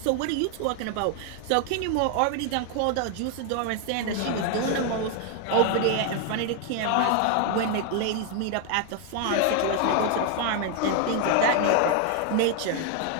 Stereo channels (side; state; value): both; different; correlation 0.01